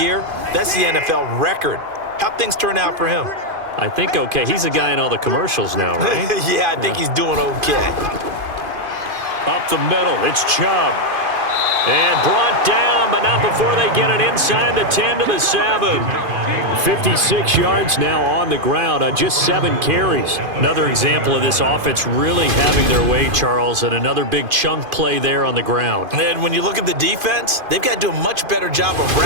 That's the NFL record. How'd things turn out for him? I think okay. He's the guy in all the commercials now, right? Yeah, I think he's doing okay. Up the middle, it's Chubb. And brought down, but not before they get it inside the 10 to the 7. 56 yards now on the ground on just 7 carries. Another example of this offense really having their way, Charles, and another big chunk play there on the ground. And when you look at the defense, they've got to do a much better job of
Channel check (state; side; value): late; left; 2.5 ms